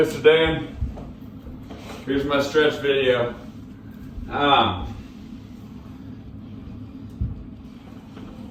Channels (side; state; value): both; identical; correlation 1.00